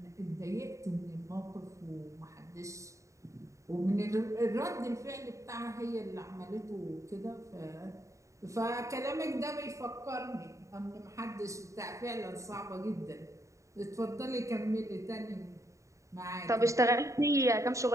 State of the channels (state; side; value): late; left; 0.15 ms